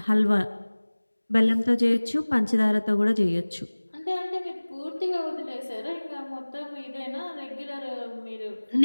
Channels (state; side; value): inverted; both; correlation -1.00